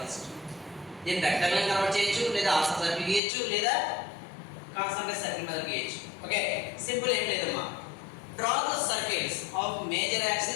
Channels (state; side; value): drops out; right; at 3.2 s